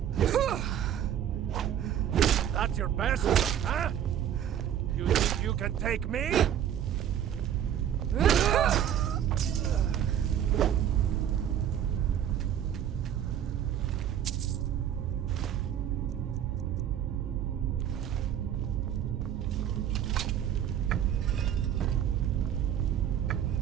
That's your best, huh? You think you can take me?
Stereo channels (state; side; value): quieter; left; 10.0 dB